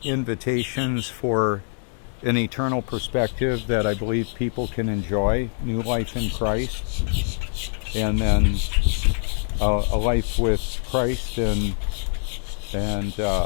for an eternal perspective that I believe people can enjoy, new life in Christ, and then a life with Christ and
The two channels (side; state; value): right; silent; 63 dB below the other